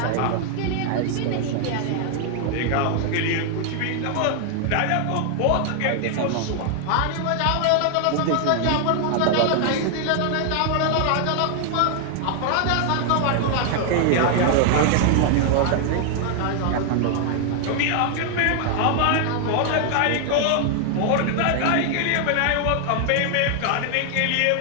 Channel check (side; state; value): both; different; correlation 0.00